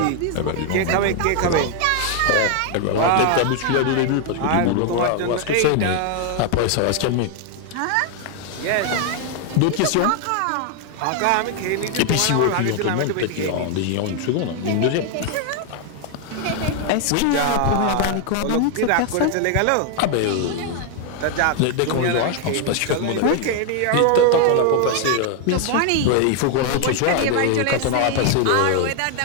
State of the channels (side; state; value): both; different; correlation 0.00